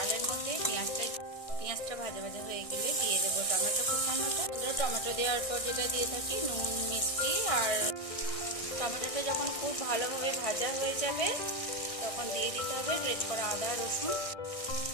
মধ্যে পেঁয়াজটা ভাজা ভাজা হয়ে গেলে দিয়ে দেবো টমেটো কুচানোটা। টমেটো দেওয়ার পর যেটা দিয়ে থাকি নুন, মিষ্টি। আর টমেটোটা যখন খুব ভালোভাবে ভাজা হয়ে যাবে তখন দিয়ে দিতে হবে গ্রেট করা আদা রসুন।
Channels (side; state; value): right; late; 1.6 ms